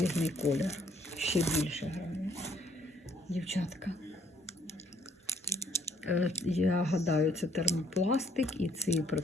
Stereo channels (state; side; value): normal; both; correlation 0.65